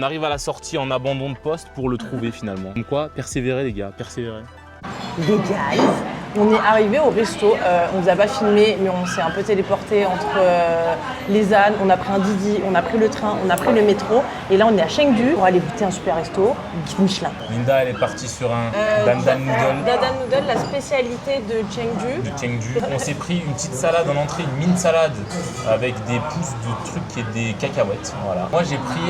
arrive à la sortie en abandon de poste pour le trouver finalement. Comme quoi, persévérer les gars, persévérer. Les guys, on est arrivé au resto, on vous a pas filmé, mais on s'est un peu téléporté entre les ânes, on a pris un Didi, on a pris le train, on a pris le métro, et là on est à Chengdu pour aller goûter un super resto, guide Michelin. Linda, elle est partie sur un dandan noodle. Dandan noodle, la spécialité de Chengdu. De Chengdu. On s'est pris une petite salade en entrée, une mini salade avec des pousses de trucs et des cacahuètes. Voilà. Moi j'ai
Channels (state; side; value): identical; both; correlation 1.00